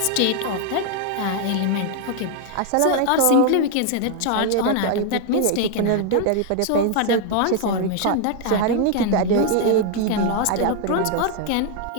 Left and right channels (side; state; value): both; different; correlation 0.00